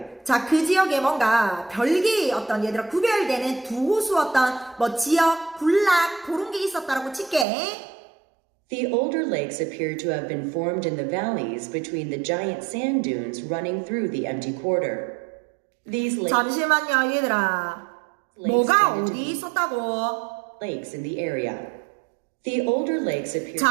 자, 그 지역에 뭔가 별개의 어떤 얘들아 구별되는 두 호수 어떤 뭐 지역, 군락 그런 게 있었다라고 칠게. The older lakes appear to have been formed in the valleys between the giant sand dunes running through the empty quarter. These 잠시만요, 얘들아. 뭐가 어디 있었다고? lakes in the area. The older lakes appear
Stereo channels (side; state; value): left; drops out; at 7.5 s